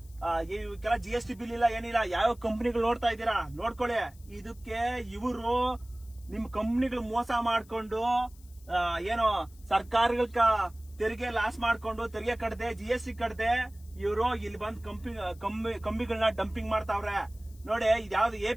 ಇವಕ್ಕೆಲ್ಲ GST ಬಿಲ್ ಇಲ್ಲ ಏನಿಲ್ಲ ಯಾವ ಕಂಪ್ನಿಗಳು ನೋಡ್ತಾ ಇದ್ದೀರಾ ನೋಡ್ಕೊಳ್ಳಿ ಇದಕ್ಕೆ ಇವರು ನಿಮ್ ಕಂಪ್ನಿಗಳು ಮೋಸ ಮಾಡ್ಕೊಂಡು ಏನೋ ಸರ್ಕಾರಗಳ ತೆರಿಗೆ ಲಾಸ್ ಮಾಡ್ಕೊಂಡು ತೆರಿಗೆ ಕಟ್ಟದೆ GST ಕಟ್ಟದೆ ಇವರು ಇಲ್ಲಿ ಬಂದ್ ಕಂಬಿಗಳನ್ನ ಡಂಪಿಂಗ್ ಮಾಡ್ತಾವ್ರೆ ನೋಡಿ ಇದ್ಯಾವ್ದು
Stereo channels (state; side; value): noise; left; hiss, 27 dB below the sound